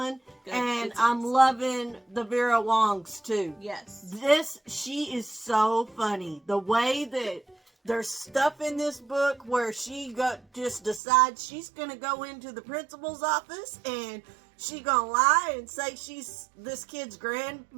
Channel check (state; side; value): drops out; left; at 11.0 s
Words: Good. And Good I'm times. loving the Vera Wongs too. Yes. She is so funny. The way that there's stuff in this book where she just decides she's going to go into the principal's office and she going to lie and say she's this kid's